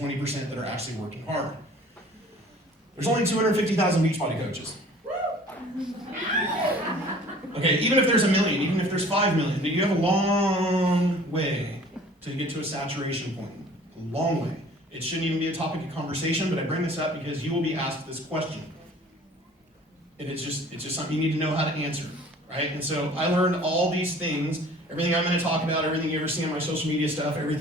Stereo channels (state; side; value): normal; both; correlation 0.49